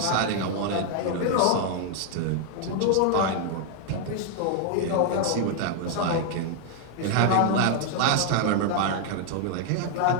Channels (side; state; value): both; different; correlation 0.00